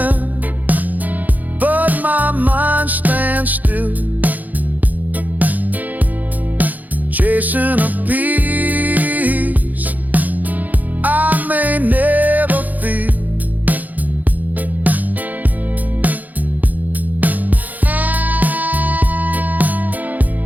but my mind stands still, chasing a peace I may never feel.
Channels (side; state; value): left; late; 0.081 ms